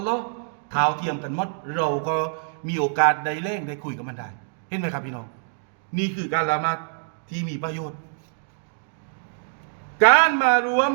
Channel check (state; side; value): silent; left; digital silence